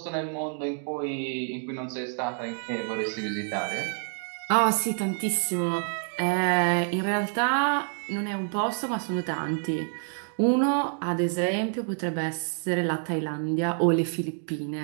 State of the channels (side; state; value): left; silent; 55 dB below the other